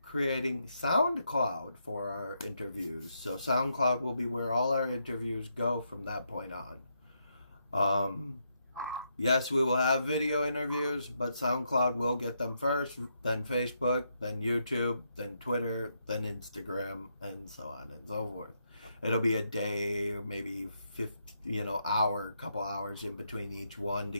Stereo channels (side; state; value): both; inverted; correlation -0.79